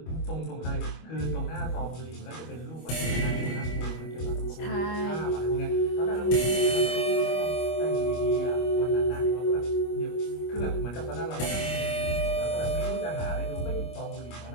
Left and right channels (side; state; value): right; late; 25 ms